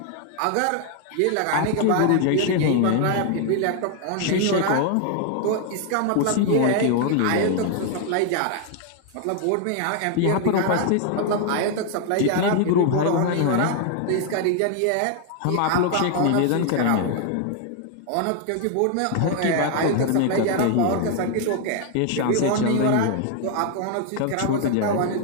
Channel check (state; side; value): different; both; correlation 0.00